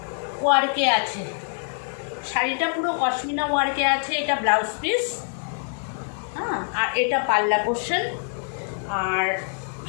ওয়ার্কে আছে, শাড়িটা পুরো পশমিনা ওয়ার্কে আছে। এটা ব্লাউজ পিস, আর এটা পাল্লা পোর্শন। আর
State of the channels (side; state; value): right; silent; 58 dB below the other